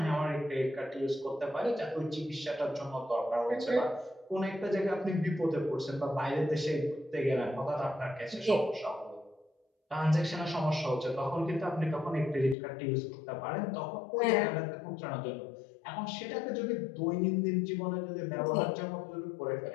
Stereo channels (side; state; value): right; drops out; at 12.6 s